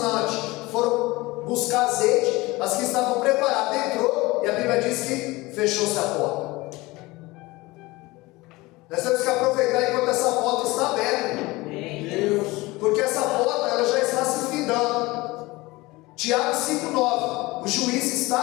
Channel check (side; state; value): right; quieter; 21.4 dB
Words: foram buscar azeite, as que estavam preparadas entrou, e a Bíblia diz que fechou-se a porta. Nós temos que aproveitar enquanto essa porta está aberta, porque essa porta ela já está se findando. Tiago 5,9, o juiz